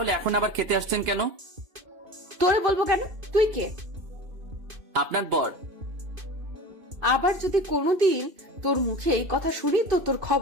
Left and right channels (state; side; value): late; left; 2.5 ms